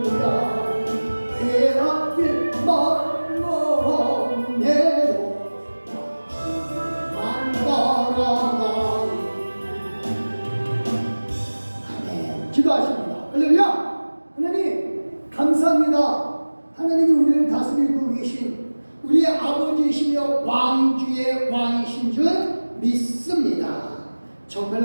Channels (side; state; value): both; inverted; correlation -1.00